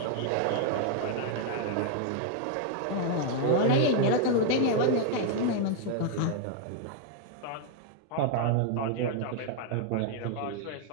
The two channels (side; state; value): both; different; correlation 0.00